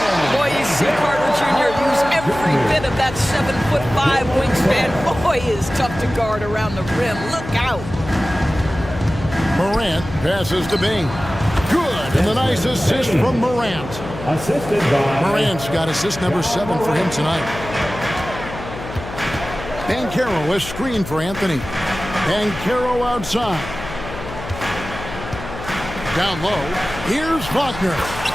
Boy, you see Carter Jr. use every bit of that 7'5" wingspan. Boy, he is tough to guard around the rim. Look out. Morant passes to Bing. Good, and the nice assist from Morant. Assisted by Morant's got assist number 7 for him tonight. And Caro a screen for Anthony. And Caro outside. Down low. Here's Wagner.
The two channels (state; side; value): noise; left; hum, 11 dB below the sound